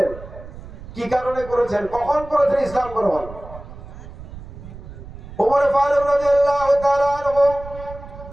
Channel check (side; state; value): right; noise; rumble, 15 dB below the sound